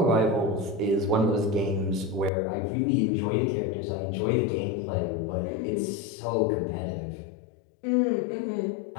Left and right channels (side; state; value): right; drops out; at 2.3 s